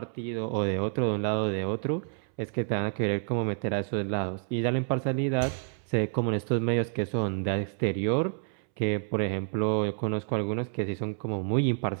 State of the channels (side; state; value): left; silent; 59 dB below the other